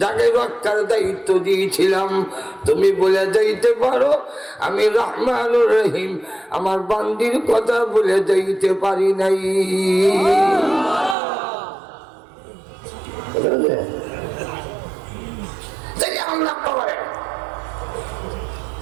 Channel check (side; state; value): left; drops out; at 11.2 s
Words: যাকে রক্ষার দায়িত্ব দিয়েছিলাম তুমি বলে যাইতে পারো আমি রহমানুর রহিম আমার বান্দির কথা বলে যাইতে পারি নাই